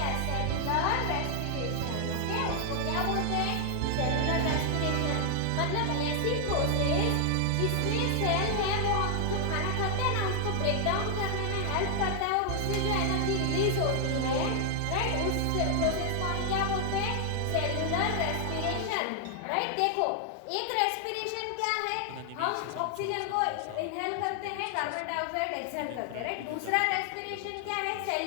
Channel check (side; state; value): both; different; correlation 0.00